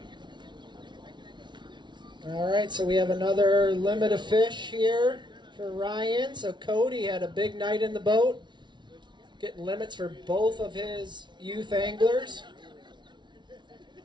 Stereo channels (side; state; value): left; late; 0.22 ms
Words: All right, so we have another limit of fish here for Ryan. So Cody had a big night in the boat. getting limits for both of his youth anglers.